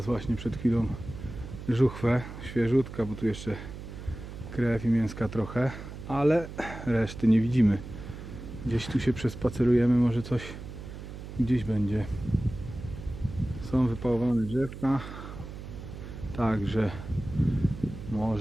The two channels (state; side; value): noise; right; hum, 11 dB below the sound